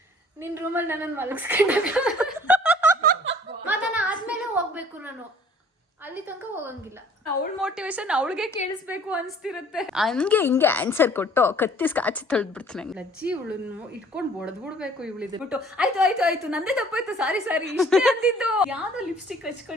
ನಿನ್ ರೂಮಲ್ಲಿ ನನ್ನನ್ನು ಮಲಗಿಸ್ಕೊಂಡಾಗ ಮತನ ಆದ್ಮೇಲೆ ಹೋಗ್ಬೇಕು, ನಾನು ಅಲ್ಲಿ ತನಕ ಹೋಗಂಗಿಲ್ಲ. ಅವಳ ಮೋಟಿವೇಶನ್ ಅವಳಿಗೆ ಕೇಳಿಸ್ಬೇಕು ಅನ್ಸ್ತಿರುತ್ತೆ. ಹಂಗೆ ಹಿಂಗೆ ಆನ್ಸರ್ ಕೊಟ್ಟು ಕತ್ತಿಸ್ ಕಾಚಿ ತೊಳ್ದ್ಬಿಡ್ತೀನಿ. ಲಜ್ಜಿ ಇವಳನ್ನು ಇಟ್ಕೊಂಡು ಬಡದ್ಬಿಡ್ಬೇಕು ಇವಳಿದ್ದು ಬಿಟ್ಟು. ಆಯ್ತು ನಂದೇ ತಪ್ಪಾಯ್ತು, ಸಾರಿ ಇಷ್ಟೇ ಅಂದಿದ್ದು. ಯಾವ್ದೋ ಲಿಪ್ಸ್ಟಿಕ್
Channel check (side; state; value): both; normal; correlation 0.53